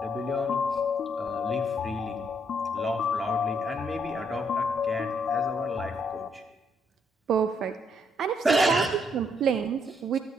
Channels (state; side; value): normal; both; correlation 0.72